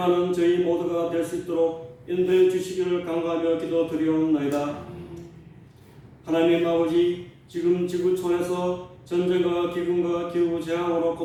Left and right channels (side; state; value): both; identical; correlation 1.00